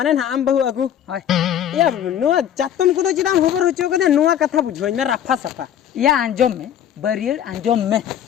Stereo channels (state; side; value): quieter; right; 9.9 dB